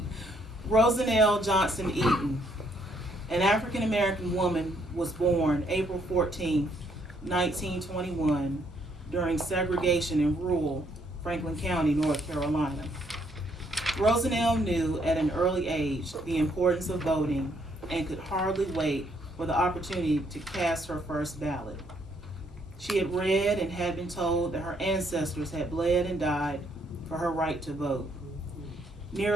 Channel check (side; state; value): both; normal; correlation 0.70